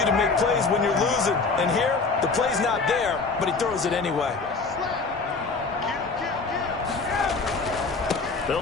to make plays when you're losing. And here, the play's not there, but he throws it anyway. They'll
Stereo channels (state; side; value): quieter; right; 4.2 dB